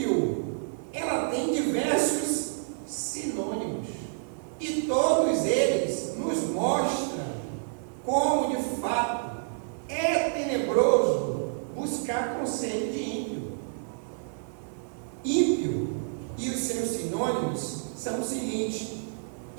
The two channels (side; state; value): left; silent; 59 dB below the other